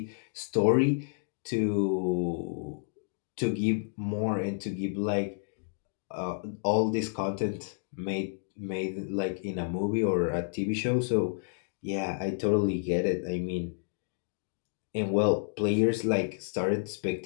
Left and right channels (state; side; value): silent; right; digital silence